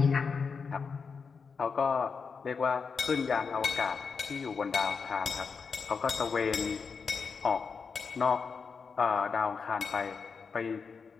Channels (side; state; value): right; quieter; 5.5 dB